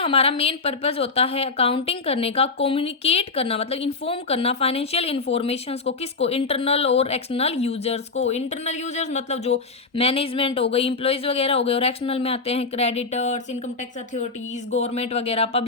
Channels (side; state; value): right; quieter; 4.2 dB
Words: मेन पर्पस होता है अकाउंटिंग करने का, कम्युनिकेट करना मतलब इन्फॉर्म करना फाइनेंशियल इंफॉर्मेशंस को। किसको? इंटरनल और एक्सटर्नल यूजर्स को। इंटरनल यूजर्स मतलब जो मैनेजमेंट हो गई, इंप्लॉयज वगैरह हो गए। और एक्सटर्नल में आते हैं creditors, income tax authorities, government वगैरह,